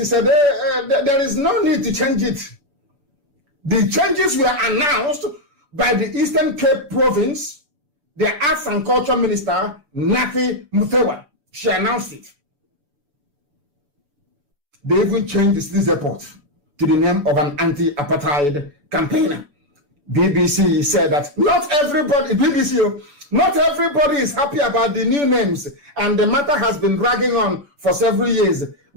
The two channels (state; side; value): late; left; 6.9 ms